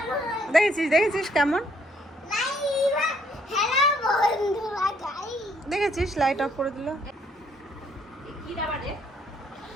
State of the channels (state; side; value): normal; both; correlation 0.68